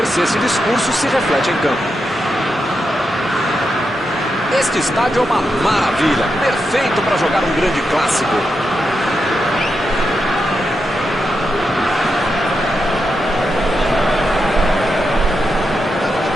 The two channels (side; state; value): both; normal; correlation 0.86